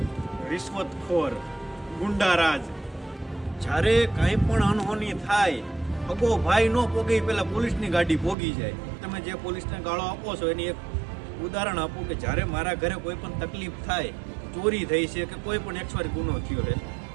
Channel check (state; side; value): drops out; left; at 8.3 s